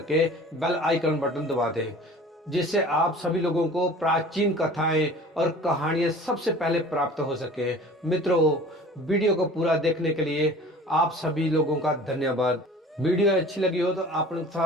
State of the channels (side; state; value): both; normal; correlation 0.44